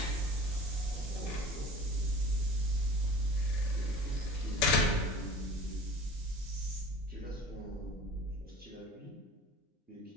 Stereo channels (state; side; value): normal; both; correlation 0.41